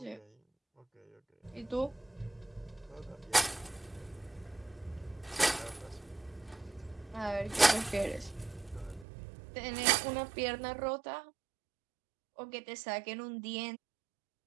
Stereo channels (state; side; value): drops out; left; at 9.1 s